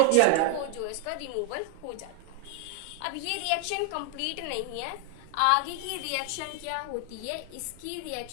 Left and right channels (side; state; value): both; different; correlation 0.00